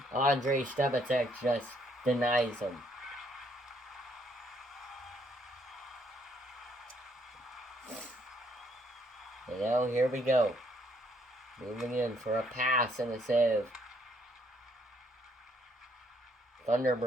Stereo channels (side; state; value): both; normal; correlation 0.69